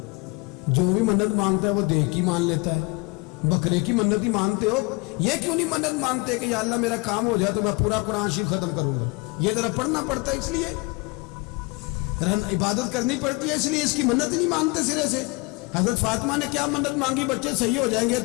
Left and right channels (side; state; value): right; quieter; 26.7 dB